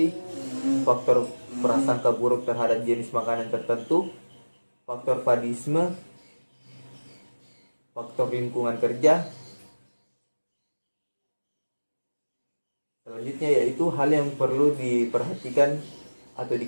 faktor prasangka buruk terhadap jenis makanan tertentu, faktor fadisme, faktor lingkungan kerja. Selanjutnya yaitu hal yang perlu diperhatikan atau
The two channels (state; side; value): inverted; both; correlation -1.00